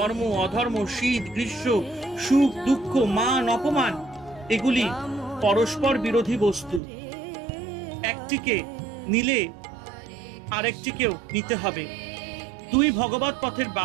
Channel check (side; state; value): left; drops out; at 6.8 s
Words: অধর্ম, শীত গ্রীষ্ম, সুখ দুঃখ, মান অপমান এগুলি পরস্পর বিরোধী বস্তু। একটিকে নিলে আরেকটিকেও নিতে হবে, দুই ভগবৎ পথের